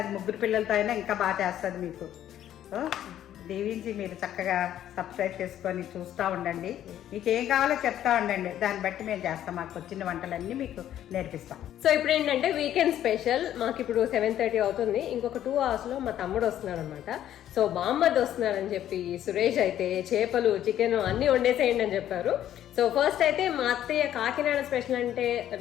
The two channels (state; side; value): quieter; right; 11.5 dB